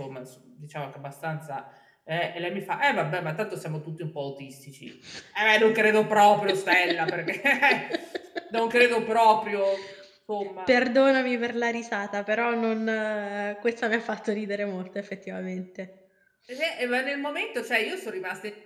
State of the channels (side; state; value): both; identical; correlation 1.00